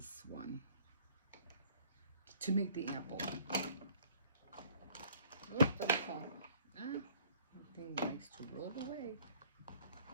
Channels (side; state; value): both; inverted; correlation -0.56